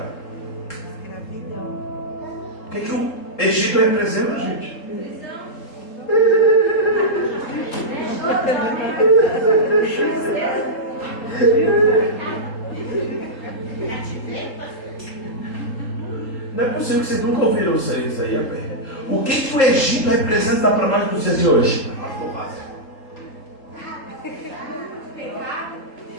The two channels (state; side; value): late; right; 3.8 ms